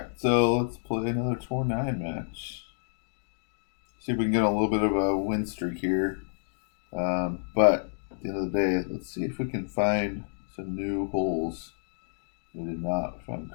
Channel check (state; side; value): silent; right; digital silence